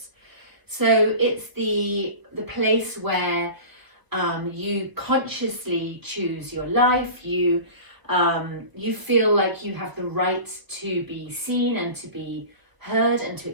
So it's the place where you consciously choose your life. You feel like you have the right to be seen and to be heard and to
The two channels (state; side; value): late; left; 1.1 ms